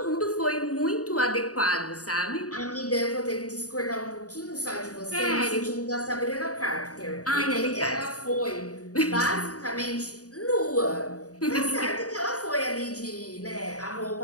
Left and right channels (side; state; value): right; late; 0.67 ms